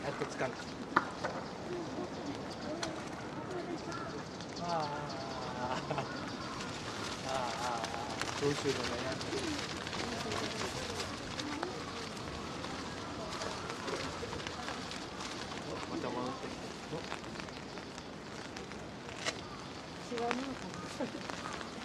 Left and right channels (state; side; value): identical; both; correlation 1.00